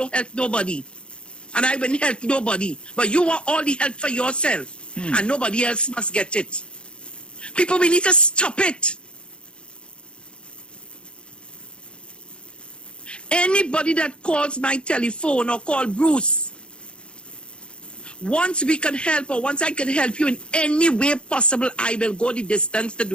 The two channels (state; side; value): late; right; 0.055 ms